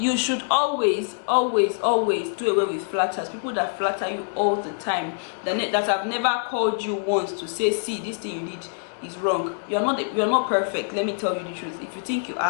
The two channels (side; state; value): right; silent; digital silence